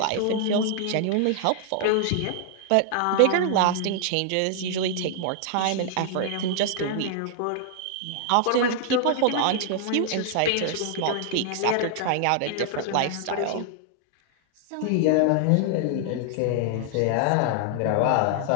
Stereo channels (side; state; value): both; different; correlation 0.00